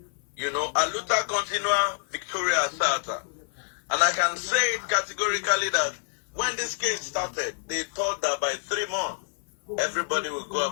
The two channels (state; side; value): silent; right; 56 dB below the other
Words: You know, a luta continua, victoria asata. And I can say it categorically that when this case started, they thought that by 3 months, everybody will go